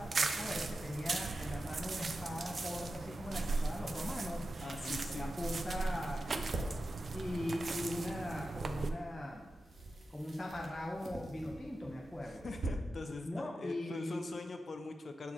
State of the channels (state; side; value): normal; both; correlation 0.91